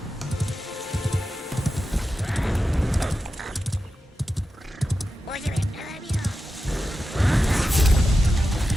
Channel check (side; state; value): both; normal; correlation 0.91